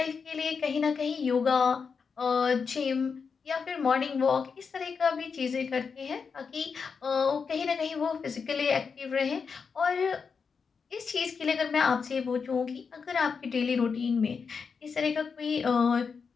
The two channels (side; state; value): right; quieter; 5.6 dB